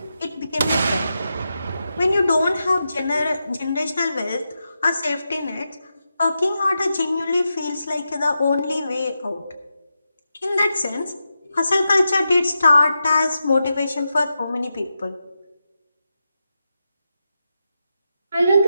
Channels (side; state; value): both; inverted; correlation -0.88